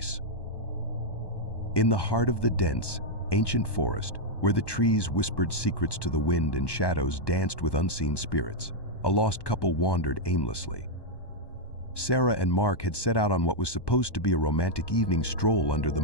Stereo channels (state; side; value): late; right; 1.1 ms